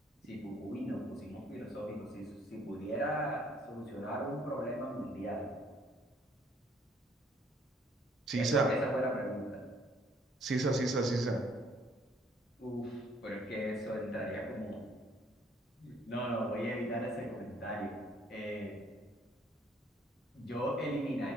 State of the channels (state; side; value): normal; both; correlation 0.63